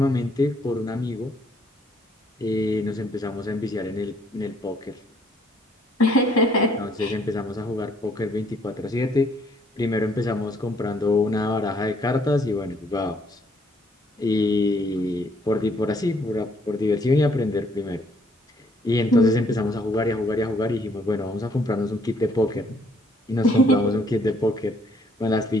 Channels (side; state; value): both; normal; correlation 0.66